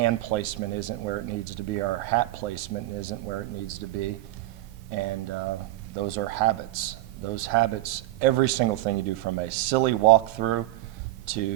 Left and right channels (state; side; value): quieter; left; 16.8 dB